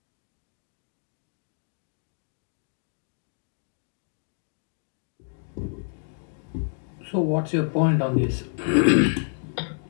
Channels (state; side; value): silent; right; digital silence